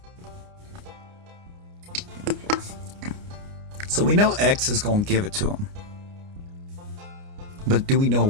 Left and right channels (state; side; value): late; left; 29 ms